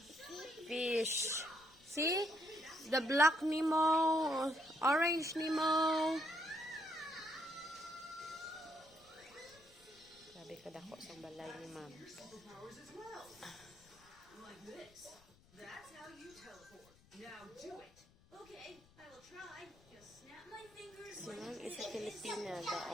Fish. See? The black Nemo, orange Nemo. Sabi ka dako sa balay ni ma'am. Like this. That's how you teleport. Now do it. Okay, I will try. Just snap my fingers. Si ma'am is a Filipina, the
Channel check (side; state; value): left; noise; rumble, 27 dB below the sound